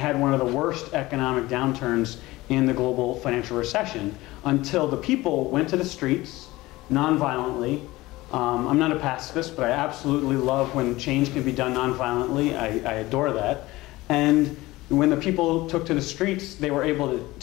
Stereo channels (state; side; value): quieter; right; 19.2 dB